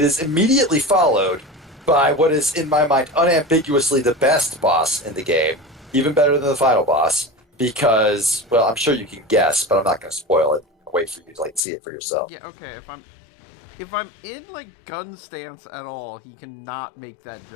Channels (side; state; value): right; drops out; at 11.6 s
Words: is immediately followed by what is, in my mind, unambiguously the best boss in the game. Even better than the final boss. Because, well, I'm sure you can guess, but I'm not going to spoil it. I'll wait for you to see it for yourself. Yeah, okay. If I'm in gun stance at all, he cannot make that